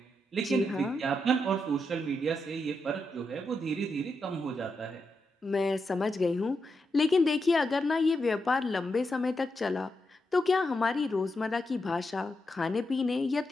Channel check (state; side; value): normal; both; correlation 0.85